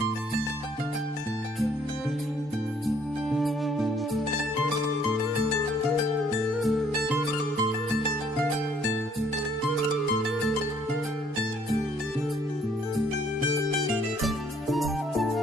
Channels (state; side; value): normal; both; correlation 0.63